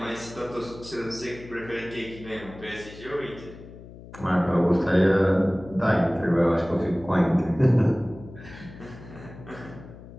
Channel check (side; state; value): left; noise; hum, 17 dB below the sound